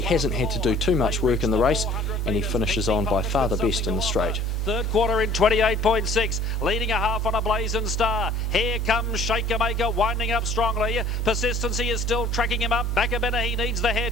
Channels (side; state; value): both; normal; correlation 0.52